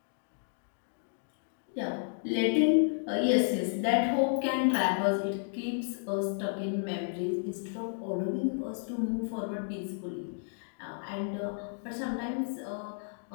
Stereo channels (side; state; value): right; silent; digital silence